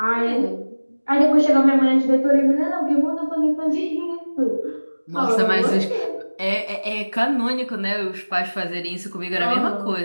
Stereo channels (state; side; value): inverted; both; correlation -1.00